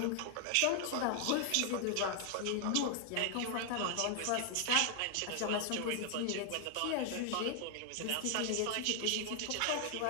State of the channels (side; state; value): both; different; correlation 0.00